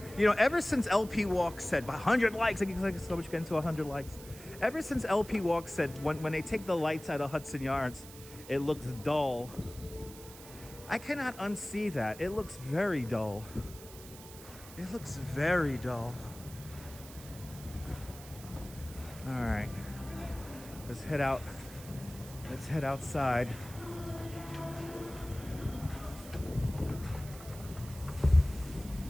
ever since LP Walk said 100 likes, I get so much getting to 100 likes. Ever since LP Walk said when they take the lights out of Hudson Yards, it looks dull. I cannot unsee that. It looks very dull. It looks very dull. All right, let's head out. Let's head outside.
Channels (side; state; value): right; noise; hiss, 17 dB below the sound